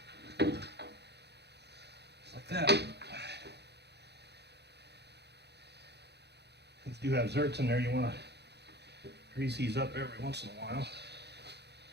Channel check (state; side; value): late; left; 0.49 ms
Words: like that. These do have zerks in there. You want to grease these up every once in a while.